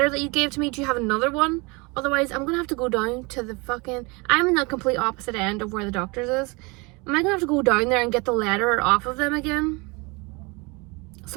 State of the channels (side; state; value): left; quieter; 27.6 dB